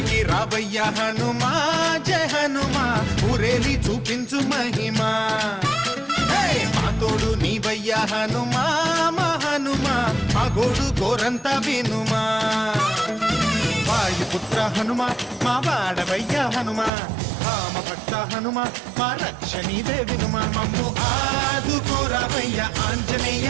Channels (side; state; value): left; drops out; at 16.9 s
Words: రావయ్య హనుమా జయ హనుమా ఊరేలి చూపించు మహిమా మా తోడు నీవయ్య హనుమా మా హనుమా మా గోడు గోరంత వినుమా వాయుపుత్ర హనుమా మా వాడవయ్య హనుమా రామభక్త హనుమా మా రక్షణీదే వినుమా మమ్ము ఆదుకోరావయ్య ఆంజనేయ